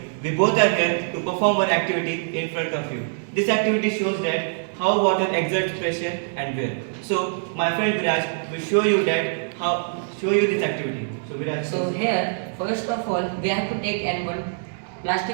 We both are here to perform one activity in front of you. This activity shows that how water exerts pressure and wear. So my friend Viraj will show you this activity. So Viraj. So here, first of all, we have to take one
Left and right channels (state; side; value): silent; left; digital silence